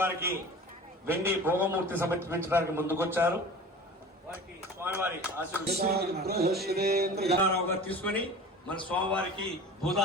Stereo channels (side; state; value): both; normal; correlation 0.38